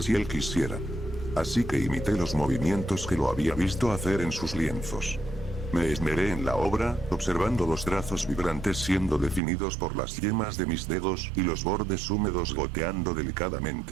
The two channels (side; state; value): left; drops out; at 9.4 s